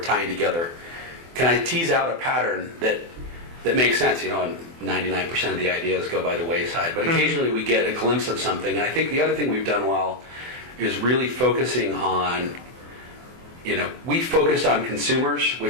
tying together? Can I tease out a pattern that makes sense? And 99% of the ideas go by the wayside, but occasionally we get a glimpse of something. And I think the other thing we've done well is really focusing on, we focused on consumers,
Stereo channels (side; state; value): left; late; 24 ms